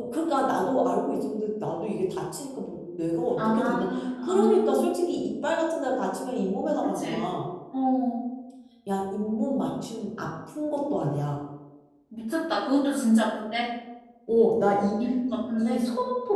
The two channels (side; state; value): both; identical; correlation 1.00